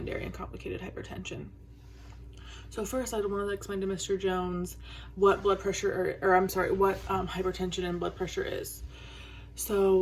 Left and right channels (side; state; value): both; identical; correlation 1.00